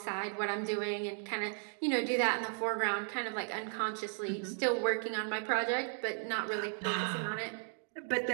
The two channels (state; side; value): silent; left; 54 dB below the other